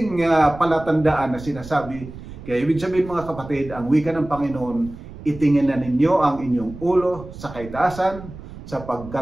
palatandaan na sinasabi. Kaya ibig sabihin mga kapatid, ang wika ng Panginoon, itingin na ninyo ang inyong ulo sa kaitaasan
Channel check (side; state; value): right; noise; rumble, 14 dB below the sound